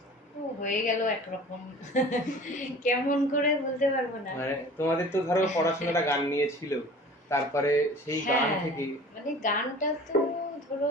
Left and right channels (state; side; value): normal; both; correlation 0.43